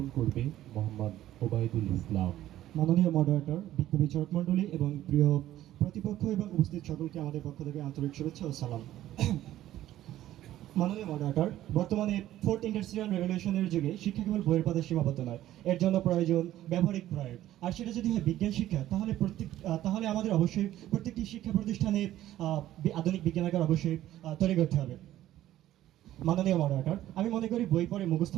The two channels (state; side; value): quieter; left; 13.6 dB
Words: করবে মোহাম্মদ ওবায়দুল ইসলাম। মাননীয় মডারেটর, বিজ্ঞ বিচারক মণ্ডলী এবং প্রিয় প্রতিপক্ষ এবং উপস্থিত সকলকে আমাদের পক্ষ থেকে আন্তরিক শুভেচ্ছা ও সালাম। মাননীয় মডারেটর, বর্তমানে ফোর্থ ইন্ডাস্ট্রিয়াল রেভলিউশনের যুগে শিক্ষা কেবল বইয়ের পথে সীমাবদ্ধ নয়, এর জন্য প্রয়োজন ব্যবহারিক প্রয়োগ। আর সেটা যদি হয় বিজ্ঞান শিক্ষা, তাহলে আমাদের অবশ্যই প্রত্যেকটি শিক্ষা প্রতিষ্ঠানে আধুনিক বিজ্ঞানাগার অবশ্যই তৈরি করতে হবে। মাননীয় মডারেটর, আমি মনে করি বই পড়ে মুখস্থ